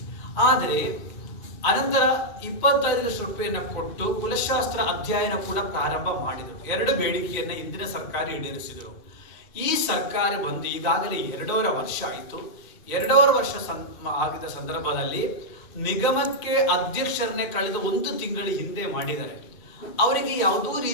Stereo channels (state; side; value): late; right; 2.1 ms